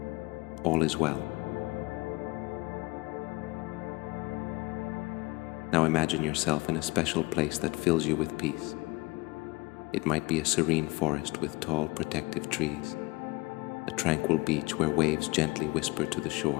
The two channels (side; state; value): right; quieter; 23.6 dB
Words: All is well. Now imagine yourself in a special place that fills you with peace. It might be a serene forest with tall, protective trees, a tranquil beach where waves gently whisper to the